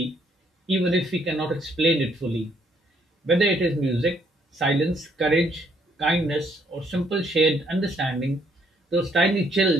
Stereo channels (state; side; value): normal; both; correlation 0.68